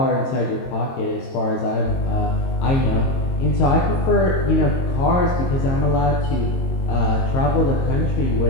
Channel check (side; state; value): right; late; 22 ms